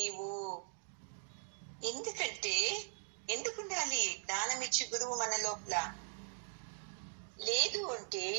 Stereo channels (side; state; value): left; silent; digital silence